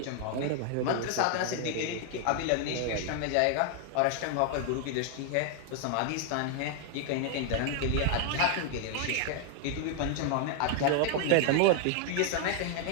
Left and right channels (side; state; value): both; different; correlation 0.00